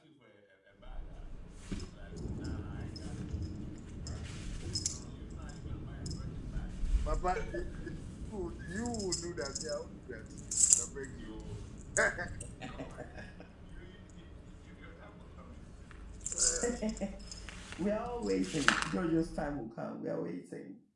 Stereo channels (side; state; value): both; identical; correlation 1.00